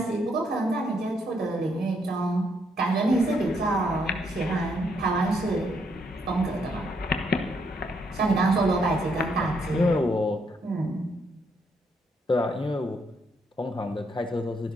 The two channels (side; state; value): both; normal; correlation 0.74